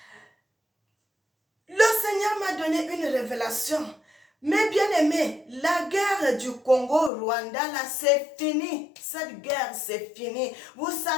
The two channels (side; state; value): right; drops out; at 7.1 s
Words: Le Seigneur m'a donné une révélation. Mais bien aimé, la guerre du Congo-Rwanda, là, c'est fini. Cette guerre, c'est fini. Vous